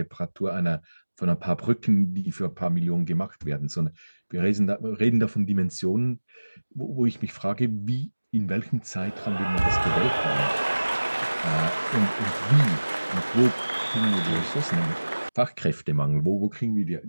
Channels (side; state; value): both; inverted; correlation -1.00